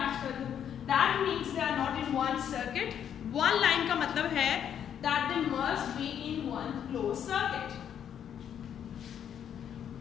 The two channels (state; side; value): quieter; right; 9.1 dB